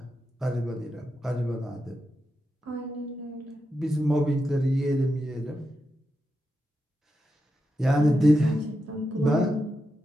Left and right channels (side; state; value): both; normal; correlation 0.87